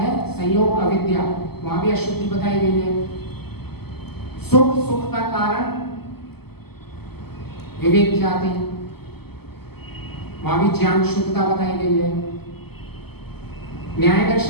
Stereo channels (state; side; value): late; right; 0.96 ms